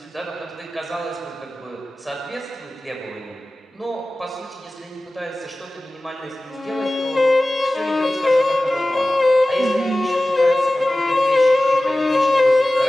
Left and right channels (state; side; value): normal; both; correlation 0.96